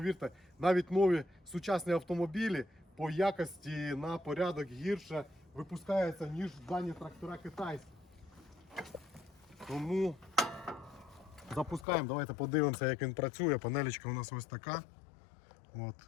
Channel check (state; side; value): drops out; right; at 11.9 s